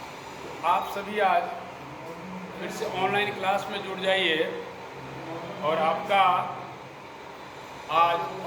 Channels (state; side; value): identical; both; correlation 1.00